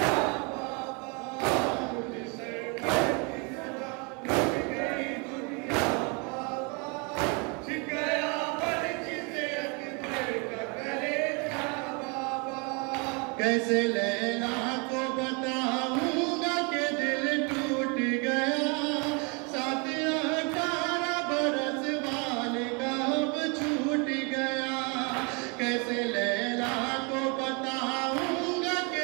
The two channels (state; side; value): quieter; left; 32.6 dB